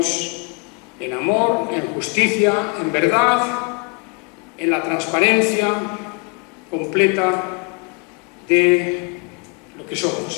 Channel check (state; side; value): quieter; right; 33.0 dB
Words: en amor, en justicia, en verdad, en la transparencia completa de lo que